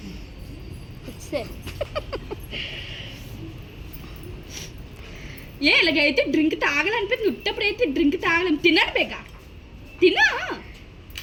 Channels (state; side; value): identical; both; correlation 1.00